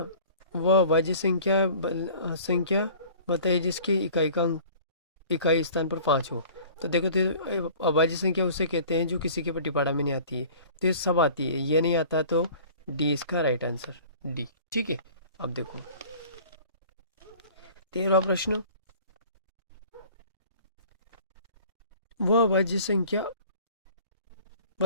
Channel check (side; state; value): both; inverted; correlation -0.46